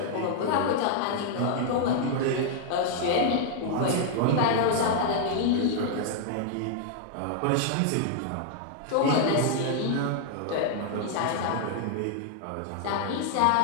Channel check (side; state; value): both; different; correlation -0.01